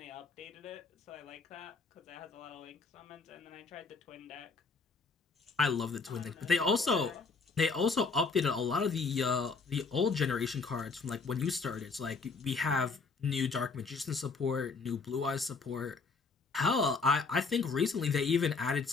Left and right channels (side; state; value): right; quieter; 4.5 dB